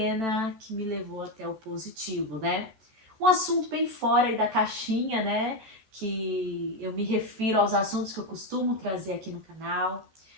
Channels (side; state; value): left; late; 14 ms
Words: que me levou até o positivo, né? Um assunto bem fora aí da caixinha, né? Que eu me refiro aos assuntos que eu costumo trazer aqui no canal,